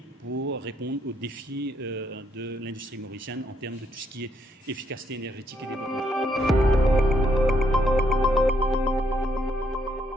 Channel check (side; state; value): both; normal; correlation 0.73